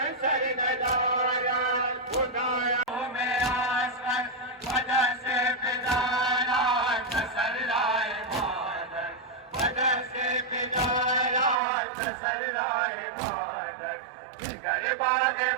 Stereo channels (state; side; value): drops out; left; at 11.6 s